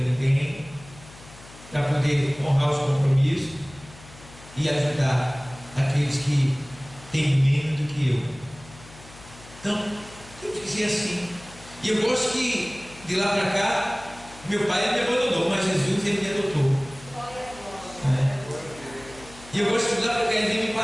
ninguém, para poder honrar os compromissos e ajudar aqueles que têm menos do que eu. Então, temos que ser assim. E eu gosto que de lá para cá, meu pai me abandonou, mas Jesus ele me adotou. E eu gosto que de lá para cá ele vem me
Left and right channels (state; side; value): noise; left; hum, 20 dB below the sound